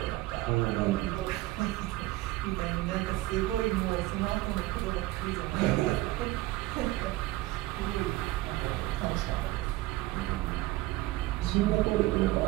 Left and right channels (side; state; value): left; quieter; 17.6 dB